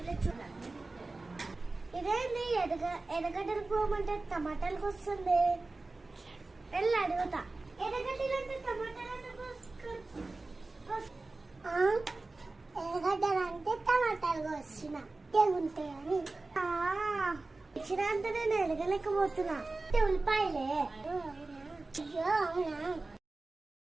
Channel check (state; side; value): quieter; left; 3.3 dB